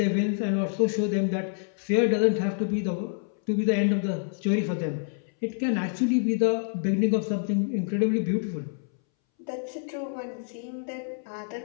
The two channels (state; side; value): silent; right; 60 dB below the other